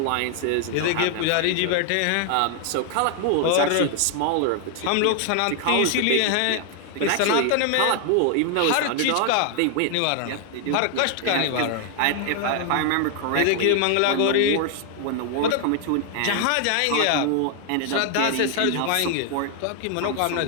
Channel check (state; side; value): different; both; correlation 0.00